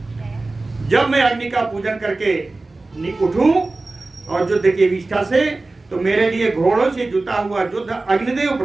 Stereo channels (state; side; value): quieter; left; 3.3 dB